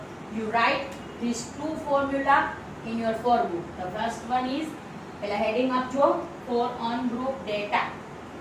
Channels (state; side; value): identical; both; correlation 1.00